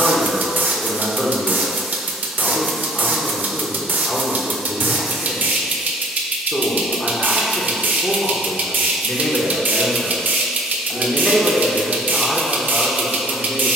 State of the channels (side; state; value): both; normal; correlation 0.53